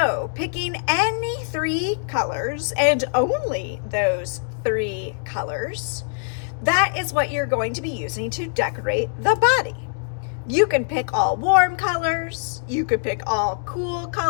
picking any 3 colors and only those 3 colors, that is what you're going to be using to decorate the body. You can pick all warm colors. You could pick all cool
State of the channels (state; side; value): silent; right; digital silence